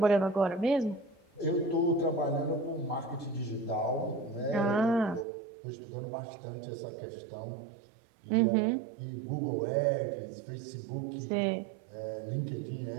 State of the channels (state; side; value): drops out; left; at 5.2 s